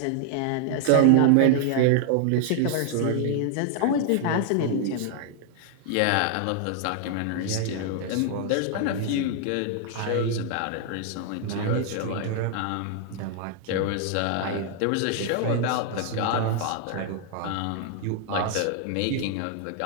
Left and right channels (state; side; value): different; both; correlation 0.00